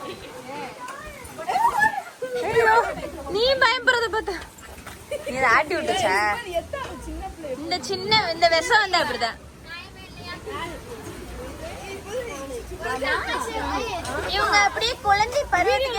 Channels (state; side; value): identical; both; correlation 1.00